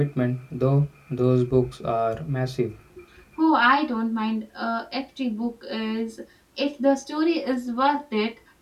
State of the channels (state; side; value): identical; both; correlation 1.00